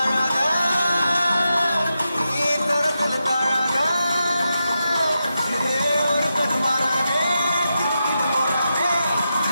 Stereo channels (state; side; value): inverted; both; correlation -0.88